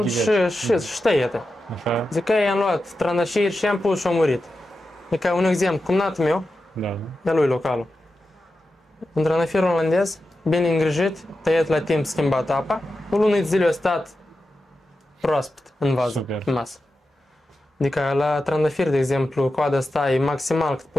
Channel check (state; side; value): normal; both; correlation 0.90